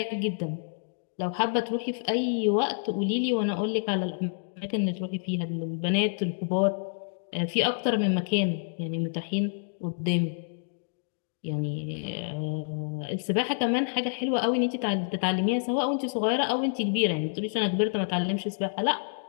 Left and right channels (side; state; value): right; silent; digital silence